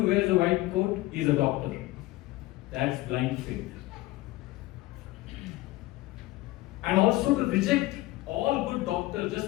wears a white coat is a doctor. That's blind faith. And also to reject all good doctors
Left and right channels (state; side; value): quieter; right; 18.1 dB